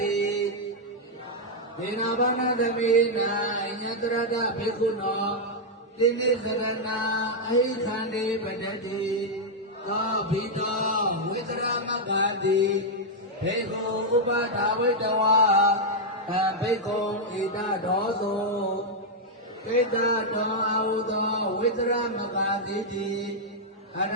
ိဒေနာဘာနာသမေနာညတရတဘေကုနောတိနိသရဏအဟိခန္တိပတတိသောဘိတောဝိတရမဂ္ဂတိဘေကုဥပဒါဝိတဝါဘေကုဣဒဒောသောဣဒတောအာဟုသောဝိတရမဂ္ဂတိအရ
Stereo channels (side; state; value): both; normal; correlation -0.03